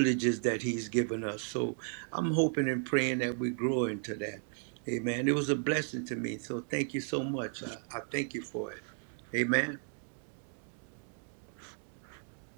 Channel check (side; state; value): left; silent; 55 dB below the other